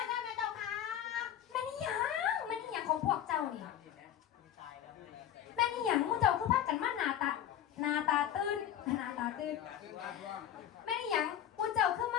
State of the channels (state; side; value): quieter; right; 10.6 dB